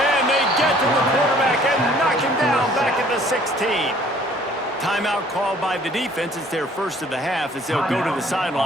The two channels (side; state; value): both; normal; correlation 0.57